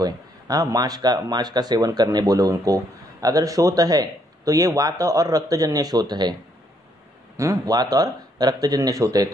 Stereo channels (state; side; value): normal; both; correlation 0.71